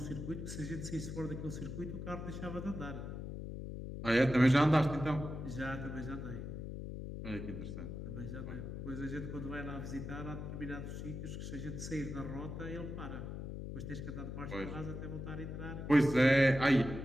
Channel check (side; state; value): left; noise; hum, 7 dB below the sound